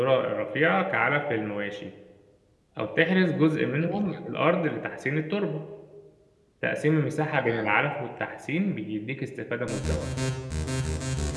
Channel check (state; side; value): identical; both; correlation 1.00